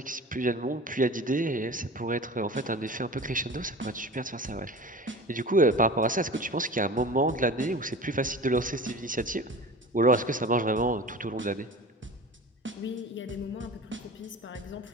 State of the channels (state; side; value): normal; both; correlation 0.36